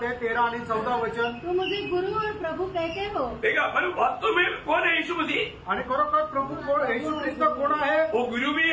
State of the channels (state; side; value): identical; both; correlation 1.00